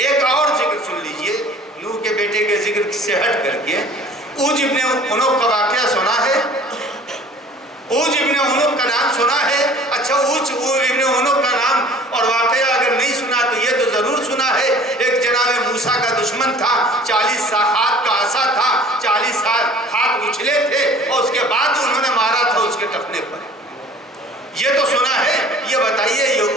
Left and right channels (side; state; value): both; normal; correlation 0.48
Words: اور ذکر سن لیجئے نوح کے بیٹے کے ذکر سے ہٹ کر کے، اوج ابن عنق کا واقعہ سنا ہے؟ اوج ابن عنق کا نام سنا ہے؟ اچھا، اوج ابن عنق کا نام اور واقعہ اگر نہیں سنا تو یہ تو ضرور سنا ہے، ایک جناب موسیٰ کا دشمن تھا، 40 ہاتھ کا عصا تھا، 40 ہاتھ اچھلے تھے اور اس کے بعد انہوں نے مارا تھا اس کے ٹخنے پر۔ یہ تو سنا ہے، یہ بتائیے یہ